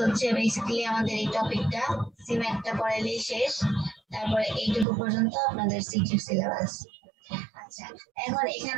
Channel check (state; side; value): drops out; left; at 4.9 s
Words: বেসিক্যালি আমাদের এই টপিকটা। সিম্যাকটা পড়াইলেই শেষ, তারপরে এইটুকু পর্যন্ত আপনাদের সিটির সিলেবাস। আচ্ছা, এখন